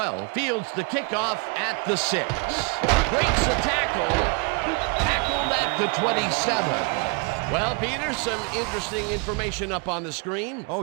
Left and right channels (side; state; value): left; quieter; 30.7 dB